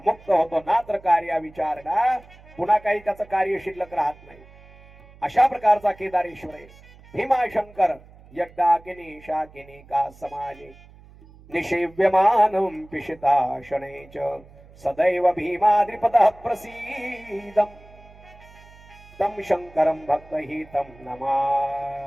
मुक्त होतो. नात्र कार्या विचारणा. पुन्हा काही त्याचं कार्य शिल्लक राहत नाही. अशा प्रकारचा केदारेश्वर आहे. भीमाशंकर यज्ञाकिनी शाकिनी का समाजे निषेव्यमानं पिशिता शनै च सदैव भीमाद्रिपदः प्रसीदं तं शंकरं भक्तहितं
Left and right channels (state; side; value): noise; right; hum, 23 dB below the sound